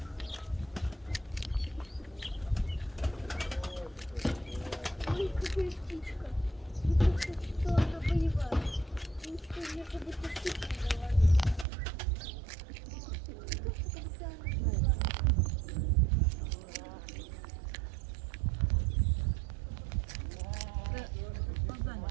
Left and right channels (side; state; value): left; drops out; at 11.7 s